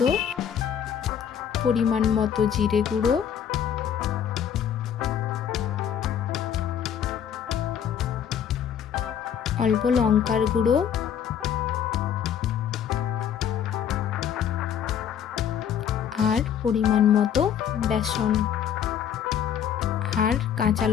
পরিমাণ মতো জিরে গুঁড়ো, অল্প লঙ্কার গুঁড়ো, আর পরিমাণ মতো বেসন আর কাঁচা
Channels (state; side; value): quieter; right; 8.8 dB